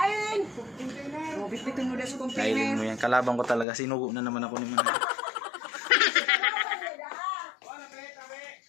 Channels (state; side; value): drops out; right; at 3.7 s